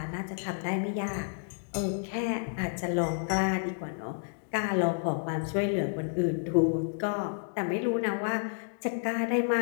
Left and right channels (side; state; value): right; silent; digital silence